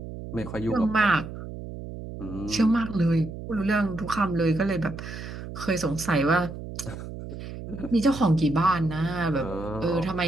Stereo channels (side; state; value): right; noise; hum, 10 dB below the sound